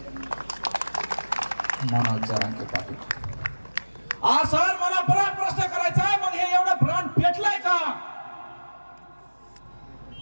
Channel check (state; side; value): inverted; both; correlation -1.00